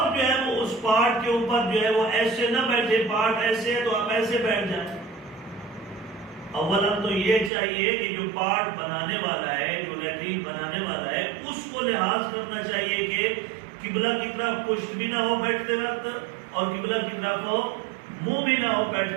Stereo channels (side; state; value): left; drops out; at 7.5 s